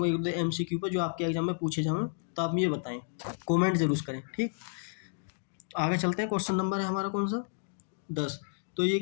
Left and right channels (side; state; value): right; silent; digital silence